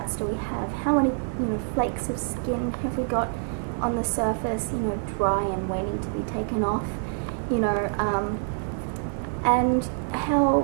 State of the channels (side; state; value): left; silent; digital silence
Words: do we have, how many, you know, flakes of skin have we got on the surface, you know, dry and waiting to be taken off, you know, and